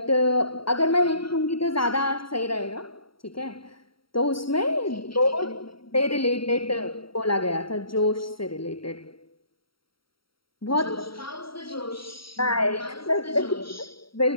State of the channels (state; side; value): late; right; 0.74 ms